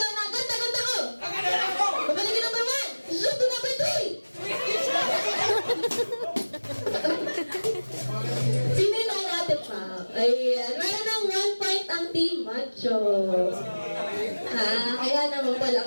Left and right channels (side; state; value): both; inverted; correlation -1.00